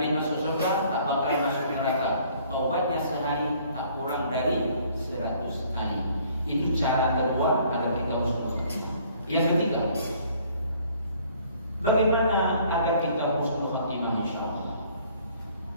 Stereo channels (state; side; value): inverted; both; correlation -0.58